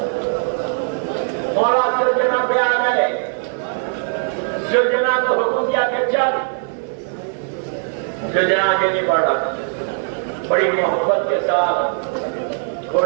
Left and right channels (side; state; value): left; silent; 62 dB below the other